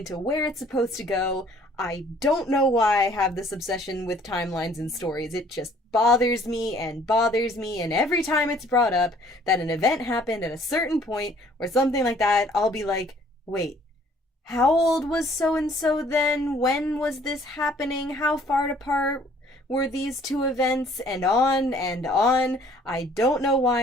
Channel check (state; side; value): normal; both; correlation 0.58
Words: where it's supposed to go. I don't know why I have this obsession with timelines and stories. It just bothers me, and every time it's brought up that an event happened at a certain point or something like that, I'll be like, wait, how old was so and so then? When was this happening? How far apart were these two events? And on and on. I don't know